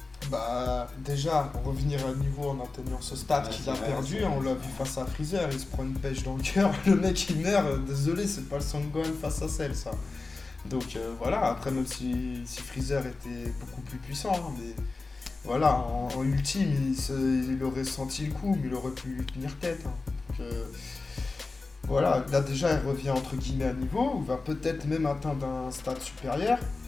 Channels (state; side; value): quieter; right; 3.7 dB